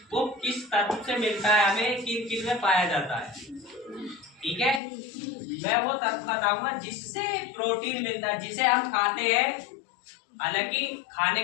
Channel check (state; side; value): drops out; right; at 4.8 s